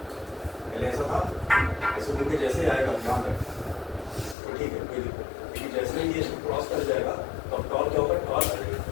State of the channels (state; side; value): drops out; right; at 4.4 s